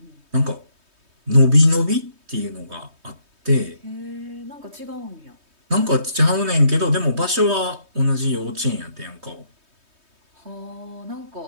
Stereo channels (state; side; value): late; left; 3.2 ms